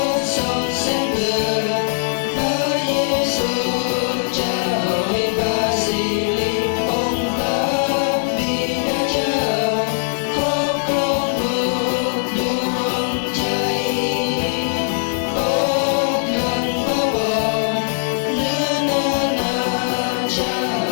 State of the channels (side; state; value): right; silent; 66 dB below the other